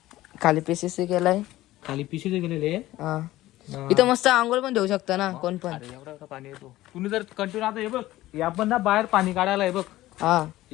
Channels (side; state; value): right; quieter; 16.3 dB